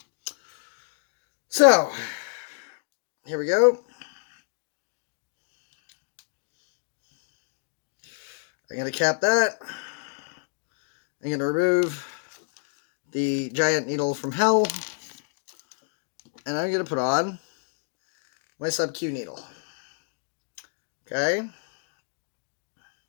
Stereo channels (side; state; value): right; silent; digital silence